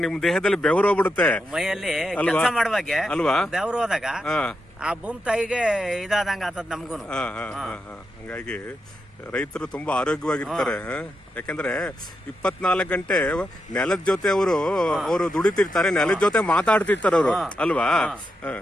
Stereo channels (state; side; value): normal; both; correlation 0.85